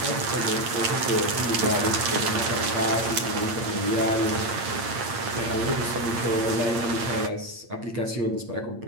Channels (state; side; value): late; left; 8.7 ms